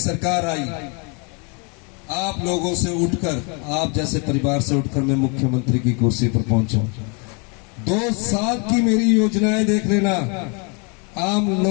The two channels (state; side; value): quieter; right; 34.1 dB